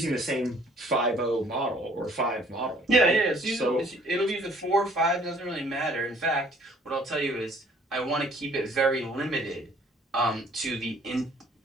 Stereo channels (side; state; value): both; normal; correlation 0.58